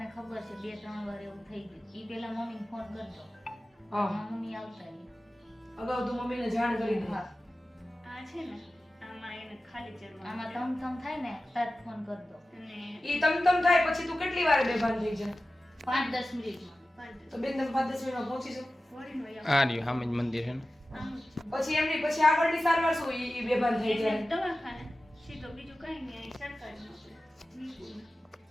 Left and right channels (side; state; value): both; normal; correlation 0.95